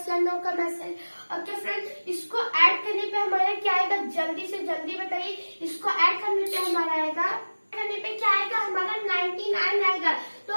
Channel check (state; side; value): inverted; both; correlation -1.00